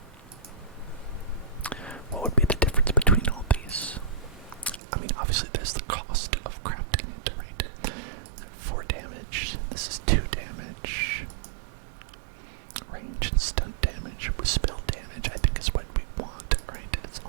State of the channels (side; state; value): left; drops out; at 4.8 s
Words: would be the difference between all these? I mean, obviously there's the cost of crafting it, right? 4 damage. This is 2 damage. Range and stunt damage with spell damage, I think is what we want, right? It's